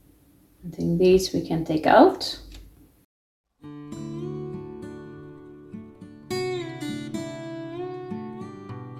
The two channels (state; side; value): identical; both; correlation 1.00